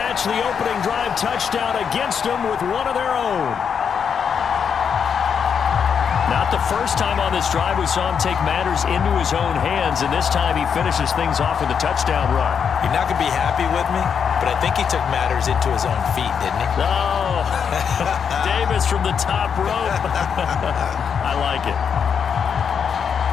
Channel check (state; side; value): quieter; right; 7.0 dB